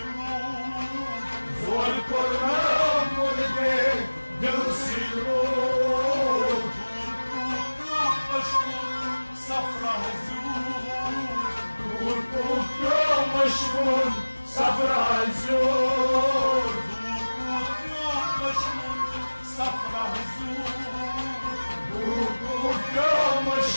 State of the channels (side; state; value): both; inverted; correlation -1.00